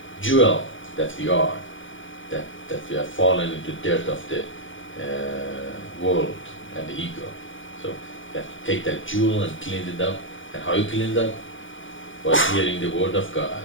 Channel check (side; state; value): right; late; 0.56 ms